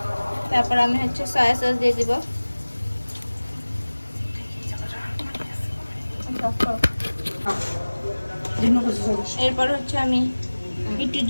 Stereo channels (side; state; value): both; inverted; correlation -1.00